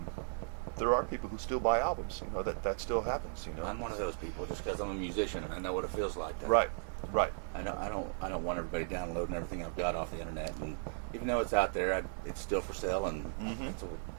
there are people who still buy albums. That still happens. I'm one of those people, just because I'm a musician and I know what it feels like. Right. I don't want everybody downloading everything I've got off the internet, and even though it's out there, it's still for sale, and that's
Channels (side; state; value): left; silent; digital silence